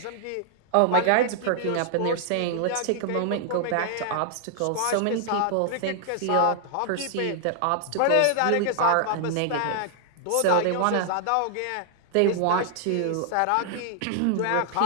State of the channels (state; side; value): different; both; correlation -0.01